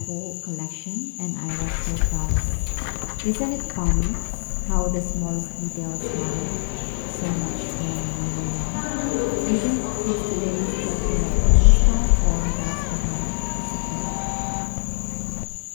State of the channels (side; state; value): right; silent; 58 dB below the other